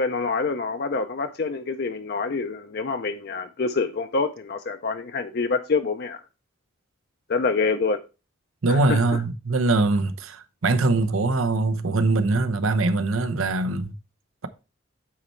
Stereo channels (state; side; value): normal; both; correlation 0.35